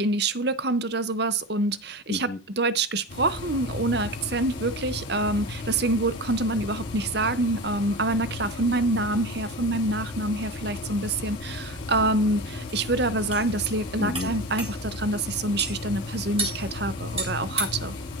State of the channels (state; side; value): normal; both; correlation 0.26